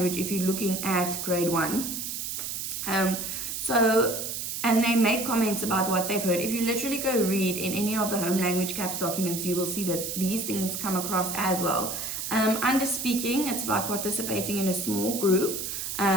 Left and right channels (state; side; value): noise; right; hiss, 4 dB below the sound